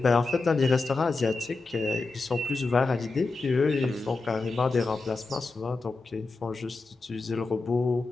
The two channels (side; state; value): right; quieter; 3.7 dB